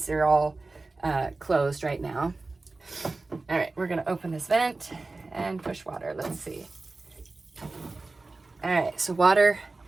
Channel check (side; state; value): left; quieter; 3.4 dB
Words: are all closed right now. All right, we're gonna open this vent and push water. Let's see. All right, so water